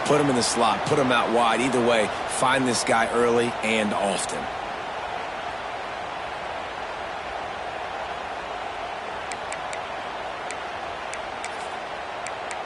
Put him in the slot, put him out wide. Either way, find this guy early and often.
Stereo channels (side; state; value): both; identical; correlation 1.00